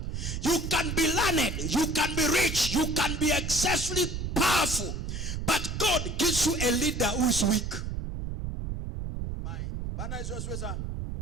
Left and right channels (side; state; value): right; noise; rumble, 4 dB below the sound